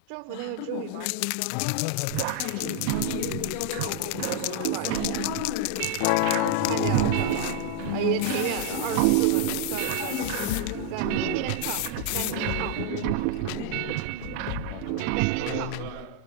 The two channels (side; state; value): both; different; correlation 0.00